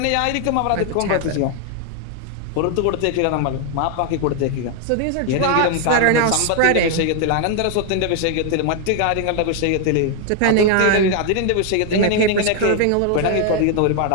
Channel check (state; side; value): different; both; correlation 0.00